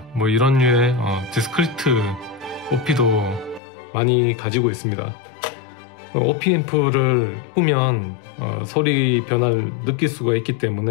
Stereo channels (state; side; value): drops out; right; at 3.6 s